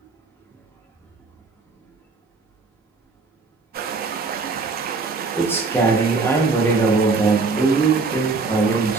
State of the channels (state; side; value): quieter; left; 4.1 dB